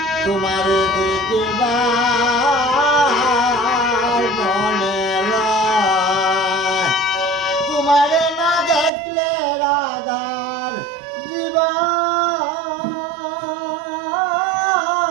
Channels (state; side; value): drops out; left; at 8.9 s